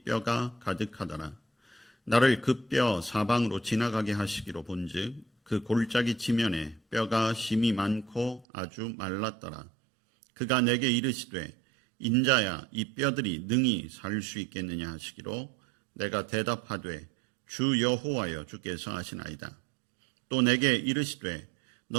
뼈가 가득하더라. 나를 그 뼈 사방으로 지나가게 하시기로 본즉 그 골짜기 지면에 뼈가 심이 많고 아주 말랐더라. 그가 내게 이르시되 인자야 이 뼈들이 능히 살 수 있겠느냐 하시기로 내가 대답하되 주 여호와여 주께서 하시나이다. 또 내게 이르시되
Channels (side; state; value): left; drops out; at 8.5 s